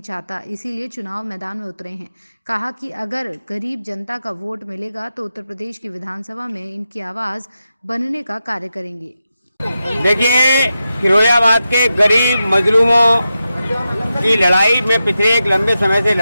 चाहता, इसीलिए चुनाव मैदान में उतरे हैं। कहा कि अगर गरीब जनता का वोट मिलेगा तो उत्तर प्रदेश की विधानसभा में इनकी आवाज बनने का कार्य करेंगे। देखिए, फिरोजाबाद के गरीब मजलूमों की लड़ाई मैं पिछले एक लंबे समय से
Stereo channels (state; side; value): inverted; both; correlation -0.90